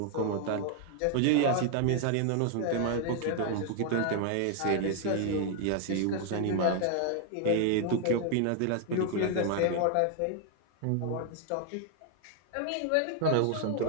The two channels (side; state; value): both; different; correlation 0.00